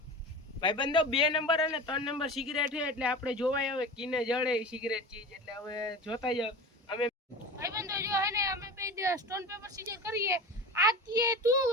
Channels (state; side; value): normal; both; correlation 0.32